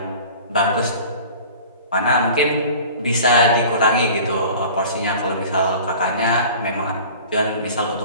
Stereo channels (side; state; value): both; inverted; correlation -0.43